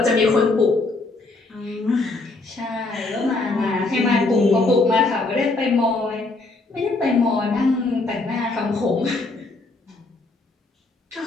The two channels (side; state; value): right; quieter; 3.3 dB